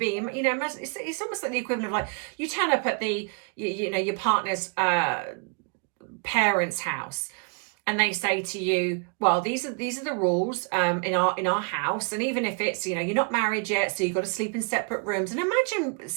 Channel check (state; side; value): quieter; left; 37.6 dB